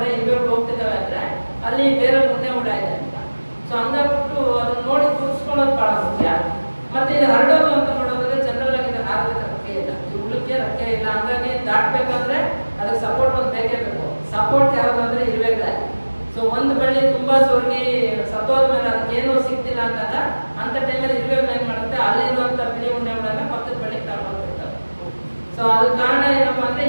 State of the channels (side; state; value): both; inverted; correlation -1.00